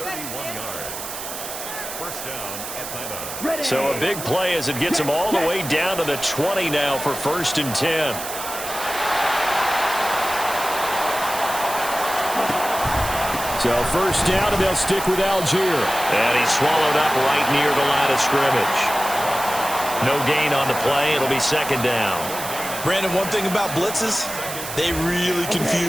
So a big play as it gets him all the way down to the 20 now for 1st and 10. So first down, and they'll stick with Algier. And he's swallowed up right near the line of scrimmage. No gain on the play. It'll be second down. Brandon, one thing about blitzes, they really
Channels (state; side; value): noise; right; hiss, 8 dB below the sound